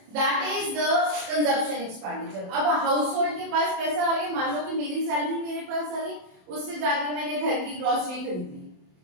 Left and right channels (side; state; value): left; late; 27 ms